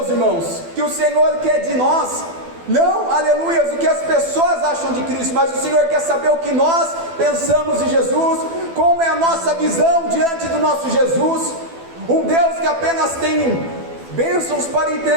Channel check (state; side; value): late; left; 12 ms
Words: irmãos, que o Senhor quer de nós, não, aleluias, o que as pessoas acham de Cristo, mas o Senhor quer saber o que nós pensamos de Jesus, Como é a nossa visão diante do nosso Jesus? Um Deus que apenas tem bênçãos para